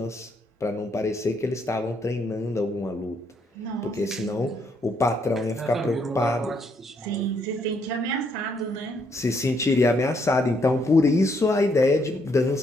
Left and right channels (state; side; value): normal; both; correlation 0.72